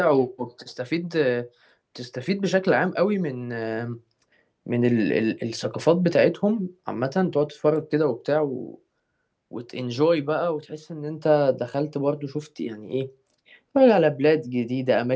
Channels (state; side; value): identical; both; correlation 1.00